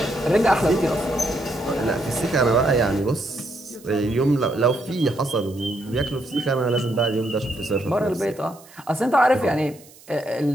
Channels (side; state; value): right; noise; hiss, 24 dB below the sound